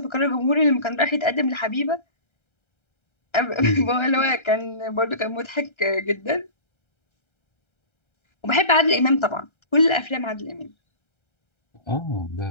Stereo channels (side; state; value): right; late; 1.3 ms